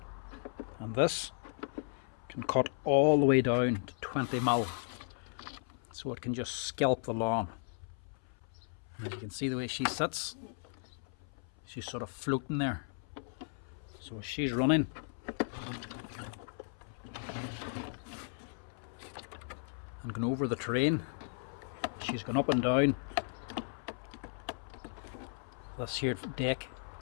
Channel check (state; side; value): silent; right; 54 dB below the other